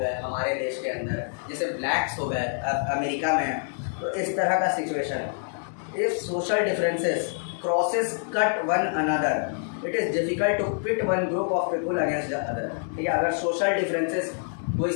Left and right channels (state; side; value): silent; right; 61 dB below the other